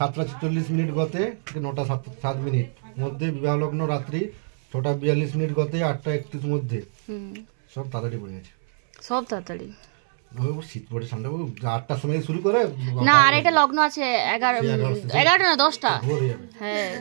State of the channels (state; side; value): silent; left; 63 dB below the other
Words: গতে 9:07 মধ্যে, বিবাহলগ্ন রাত্রি 6:42 গতে 8:31 মধ্যে। সব তাড়াতাড়ি পড়ে গেছে, সব তাড়াতাড়ি। শীত পড়ে ঠান্ডা 8টার সময় শুরু করে না, আর এটা লগ্ন আছে 11টা না 10টা। হ্যাঁ,